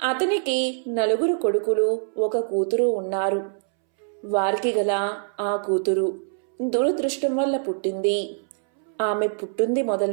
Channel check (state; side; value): silent; left; 62 dB below the other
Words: 4 కొడుకులు, 1 కూతురు ఉన్నారు. వారికి గల ఆ కూతురు దురదృష్టం వల్ల పుట్టింది. ఆమె పుట్టింది